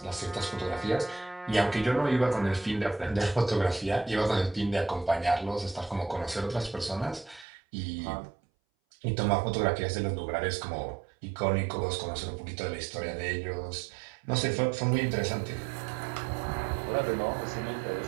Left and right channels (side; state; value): left; drops out; at 7.5 s